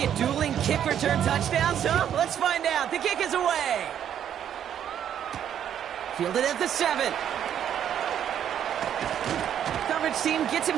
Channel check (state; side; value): quieter; left; 9.6 dB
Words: dueling kick return touchdowns, huh? Let's find out. The kick is away. Fielded at the 7. Coverage team gets